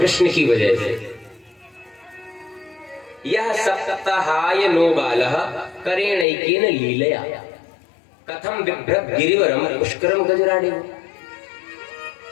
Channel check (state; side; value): drops out; right; at 6.2 s